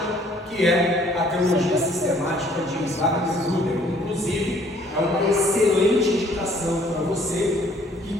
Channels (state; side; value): normal; both; correlation 0.60